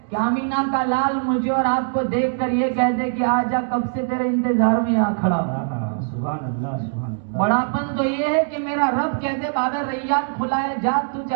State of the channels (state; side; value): silent; left; digital silence